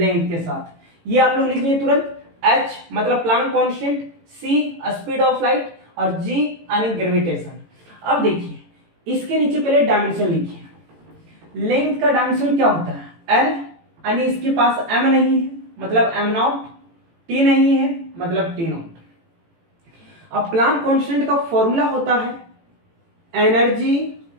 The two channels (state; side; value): late; left; 18 ms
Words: के साथ। ये आप लोग लिख लिए तुरंत, h मतलब Planck constant, c speed of light और g यानी ग्रेविटेशन। अब देखिए इसके नीचे पहले डायमेंशन लिखिए, लेंथ का डायमेंशन क्या होता है l, यानी इसके पास m नहीं है मतलब m0, t नहीं है मतलब t0। अब प्लांक कांस्टेंट का फॉर्मूला होता है एनर्जी